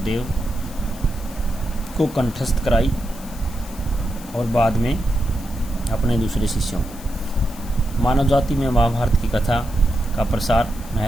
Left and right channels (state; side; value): noise; left; hiss, 18 dB below the sound